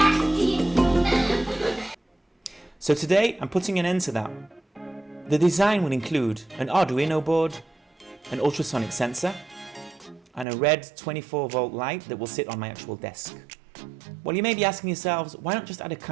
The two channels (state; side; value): drops out; left; at 10.5 s